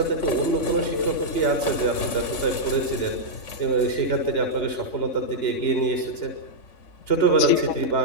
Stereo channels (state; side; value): late; right; 3.5 ms